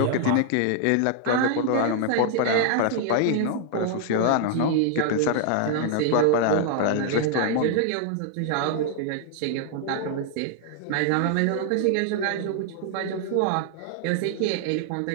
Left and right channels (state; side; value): different; both; correlation 0.00